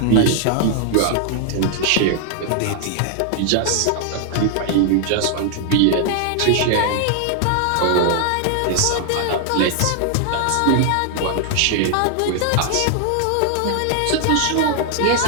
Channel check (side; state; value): both; different; correlation 0.00